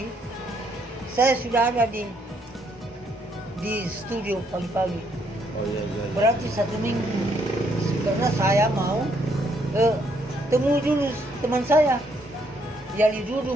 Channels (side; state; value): both; normal; correlation 0.71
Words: saya sudah ada di studio pagi-pagi. Oh iya. Berarti 1 minggu. Karena saya mau temu dulu teman saya. Yali Dudu